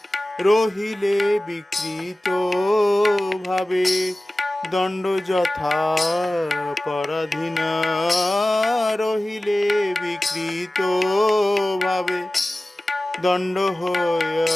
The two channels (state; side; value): normal; both; correlation 0.97